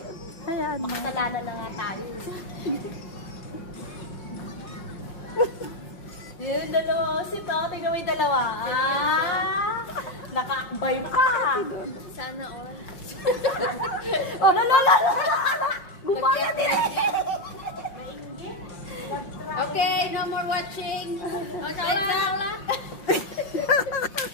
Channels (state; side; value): late; right; 5.6 ms